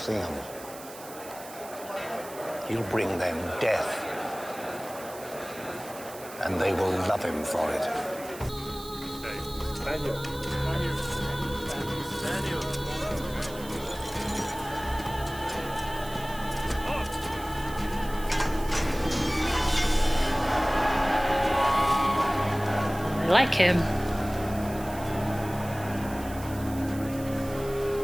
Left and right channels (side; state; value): right; noise; hiss, 16 dB below the sound